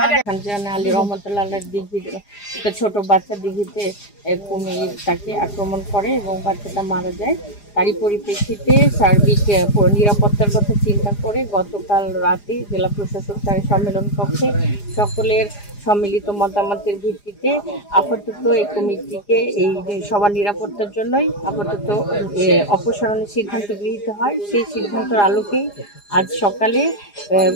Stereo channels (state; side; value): late; right; 4.9 ms